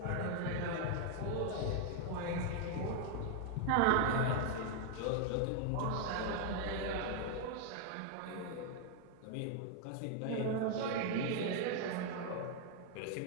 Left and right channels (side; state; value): both; different; correlation 0.00